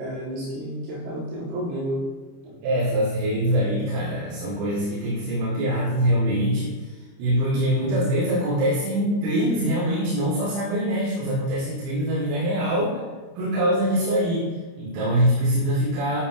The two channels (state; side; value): late; left; 29 ms